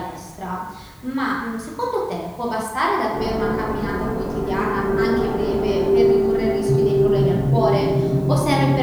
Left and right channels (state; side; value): identical; both; correlation 1.00